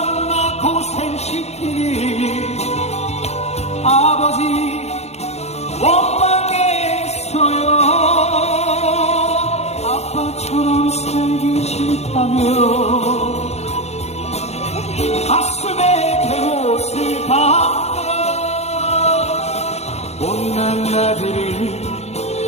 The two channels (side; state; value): right; late; 0.31 ms